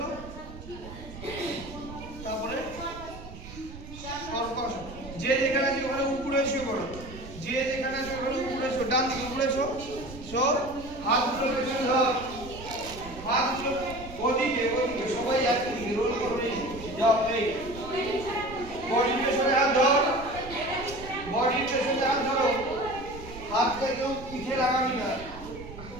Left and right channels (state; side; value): noise; right; rumble, 14 dB below the sound